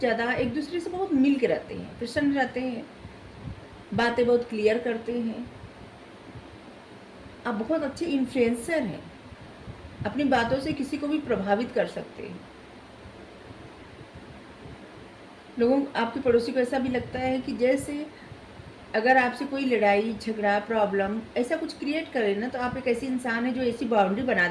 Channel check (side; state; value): both; identical; correlation 1.00